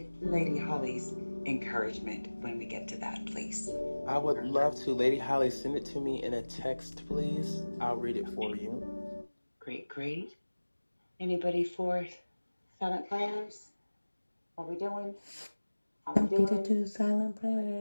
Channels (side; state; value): both; inverted; correlation -1.00